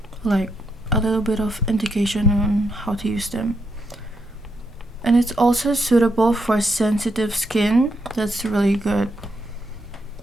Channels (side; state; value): both; normal; correlation 0.80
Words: like a little bit of indication on how to use them. And it's also suitable for sensitive skin. That's really good,